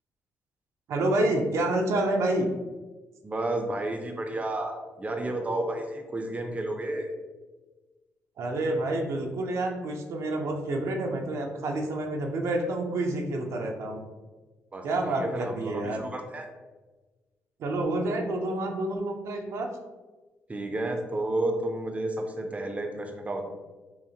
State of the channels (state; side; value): normal; both; correlation 0.73